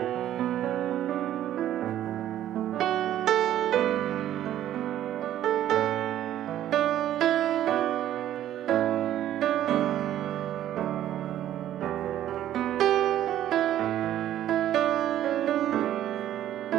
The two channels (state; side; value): quieter; left; 12.0 dB